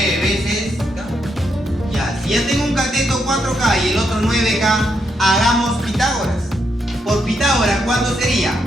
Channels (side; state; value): both; normal; correlation 0.80